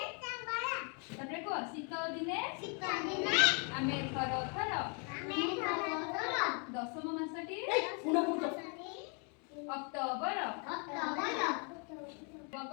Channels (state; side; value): quieter; right; 37.8 dB